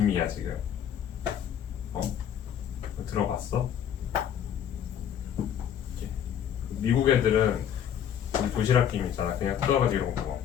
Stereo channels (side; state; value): right; quieter; 9.3 dB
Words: 지금. 들어봤어? 미국 애들은 우리 도시락 김 있잖아. 그냥 뜯어가지고 이런 거 먹어.